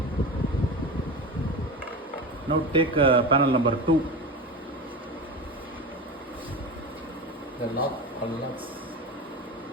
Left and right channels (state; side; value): normal; both; correlation 0.26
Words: Now take panel number 2. The lock unlocks.